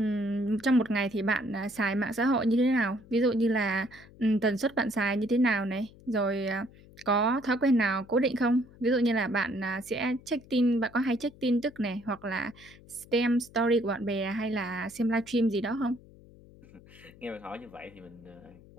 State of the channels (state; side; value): noise; left; hum, 23 dB below the sound